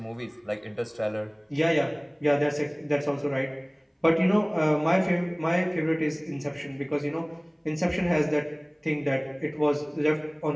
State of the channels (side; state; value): both; identical; correlation 1.00